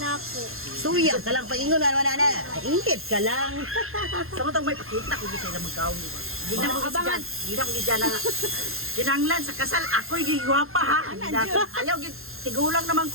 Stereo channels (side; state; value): left; late; 0.61 ms